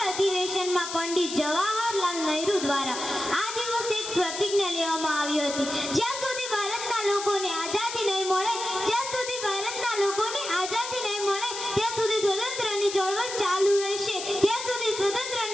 અધિવેશનમાં પંડિત જવાહરલાલ નહેરુ દ્વારા આ દિવસે એક પ્રતિજ્ઞા લેવામાં આવી હતી, જ્યાં સુધી ભારતના લોકોને આઝાદી નહીં મળે, જ્યાં સુધી ભારતના લોકોને આઝાદી નહીં મળે ત્યાં સુધી સ્વતંત્રની ચળવળ ચાલુ રહેશે, ત્યાં સુધી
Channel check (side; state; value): left; noise; hiss, 7 dB below the sound